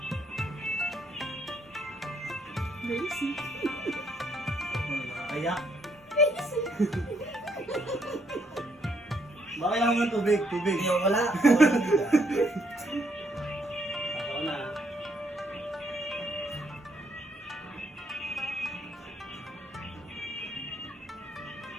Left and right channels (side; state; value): both; normal; correlation 0.72